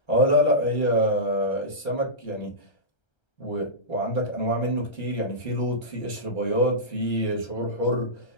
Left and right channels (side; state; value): right; late; 1.3 ms